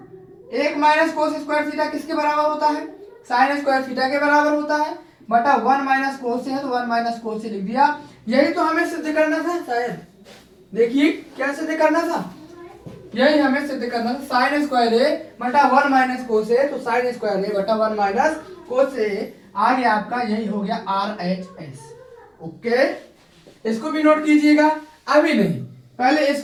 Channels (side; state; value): both; identical; correlation 1.00